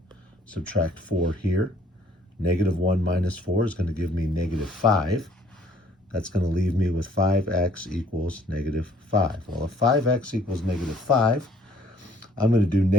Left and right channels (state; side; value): normal; both; correlation 0.60